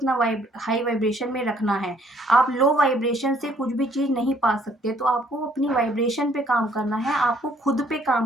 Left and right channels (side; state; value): both; normal; correlation 0.63